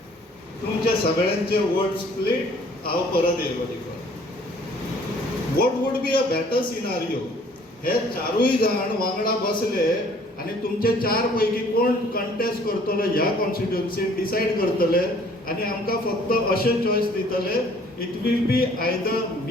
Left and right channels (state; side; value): normal; both; correlation 0.57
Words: तुमचे सगळ्यांचे वोट स्प्लीट, हांव परत येयलो तिकडे. What would be a better scenario? हे चारूय जाण वांगडा बसले आनी तुमचे 4 पैकी कोण कंटेस्ट करतलो ह्या कॉन्स्टिट्युएन्सीन डिसायड करतले आनी आमकां फक्त अशें चॉयस दितले, it will be either